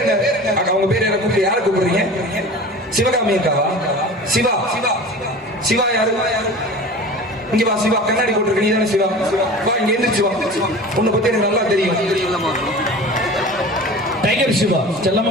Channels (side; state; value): both; normal; correlation 0.37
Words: என்ன? அக்கா அவங்க பேர் என்ன? கூப்பிட்டு யாரை கூப்பிடுறீங்க? சிவகாமி அக்காவா? சிவா சிவா சிவா யாரு? இங்க வா சிவா, கண்ணாடி போட்டுருக்க நீ தானே சிவா? வா இங்க எந்திரிச்சு வா. உன்னை பத்தி எனக்கு நல்லா தெரியும். டைகர் சிவா செல்லமா